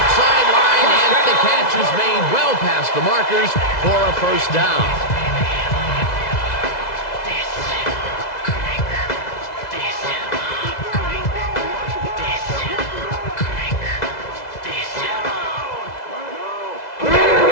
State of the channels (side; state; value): right; late; 2.0 ms